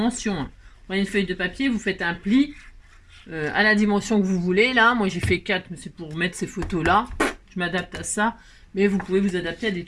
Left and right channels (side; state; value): both; identical; correlation 1.00